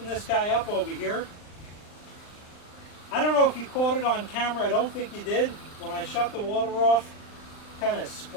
this guy up over here. I don't know if you caught it on camera. I don't think you did. When I shut the water off, kind of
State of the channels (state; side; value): late; right; 39 ms